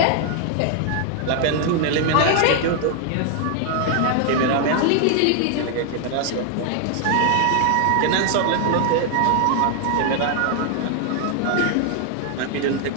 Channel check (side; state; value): both; different; correlation 0.00